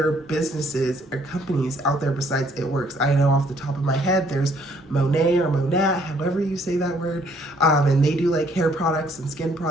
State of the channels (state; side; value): normal; both; correlation 0.64